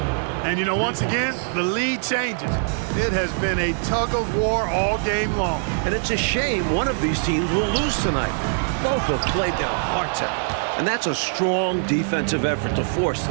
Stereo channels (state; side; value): silent; left; 58 dB below the other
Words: And you know, once again, the lead changes. It has been a tug of war all game long. And it's a shame one of these teams will lose tonight. Both have played their hearts out. And that's a strong defensive effort to force